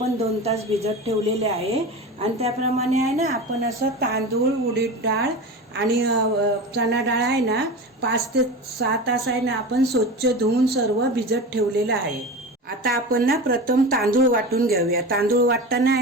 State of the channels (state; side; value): normal; both; correlation 0.29